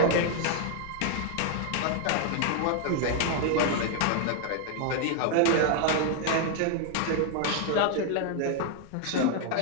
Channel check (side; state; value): both; different; correlation 0.00